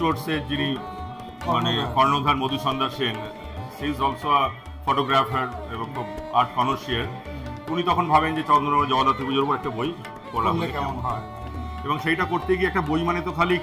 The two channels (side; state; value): both; identical; correlation 1.00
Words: যিনি মানে কর্ণধার Madhusandhya Sen, she is also a photographer এবং আর্ট কনসিয়ার, উনি তখন ভাবেন যে চন্দ্রনগর জগদ্ধাত্রী পুজোর উপর একটা বই পড়া হলে কেমন হয়। এবং সেইটা করতে গিয়ে একটা বই মানে তো খালি